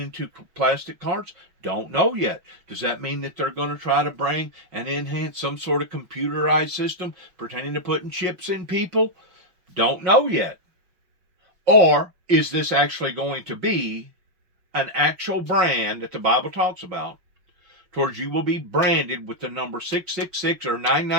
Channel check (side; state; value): left; late; 5.6 ms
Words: to plastic cards? Don't know yet. Does that mean that they're going to try to bring and enhance some sort of computerized system pertaining to putting chips in people? Don't know yet. Or is this actually going to be an actual brand that the Bible talks about, towards you will be branded with the number 666 or